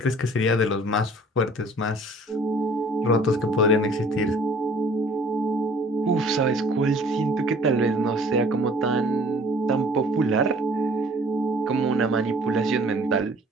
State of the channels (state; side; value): normal; both; correlation 0.53